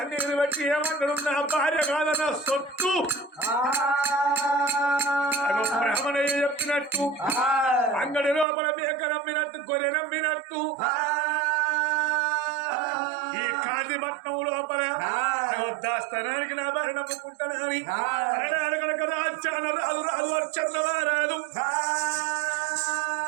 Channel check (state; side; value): drops out; left; at 8.5 s